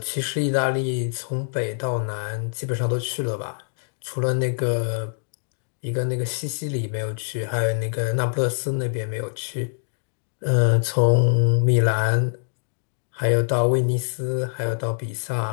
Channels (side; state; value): right; silent; digital silence